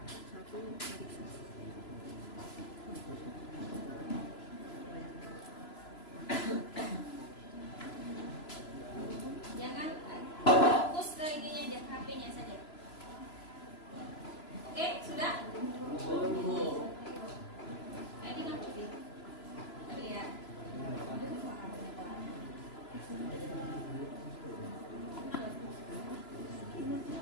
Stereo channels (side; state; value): right; late; 3.0 ms